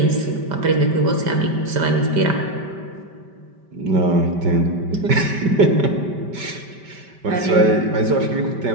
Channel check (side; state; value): left; late; 5.1 ms